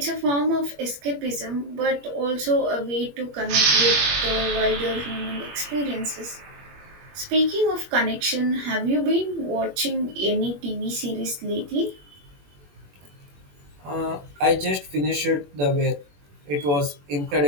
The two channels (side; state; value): left; late; 21 ms